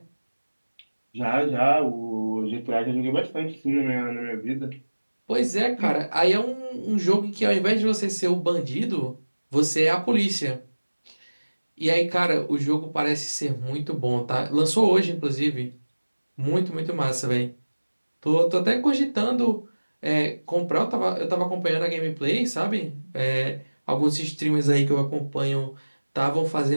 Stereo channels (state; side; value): inverted; both; correlation -1.00